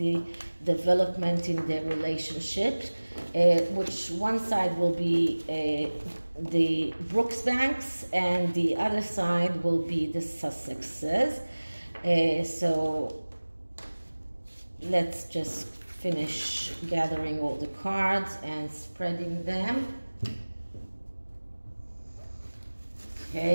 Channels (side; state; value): both; inverted; correlation -1.00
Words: development in their relationship, which one side will be the Brooksbands and the other side will be the Sussexes. So let's just finish gathering all the cards and spreading them.